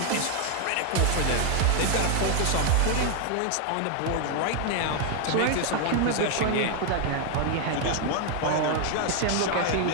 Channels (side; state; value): both; different; correlation 0.01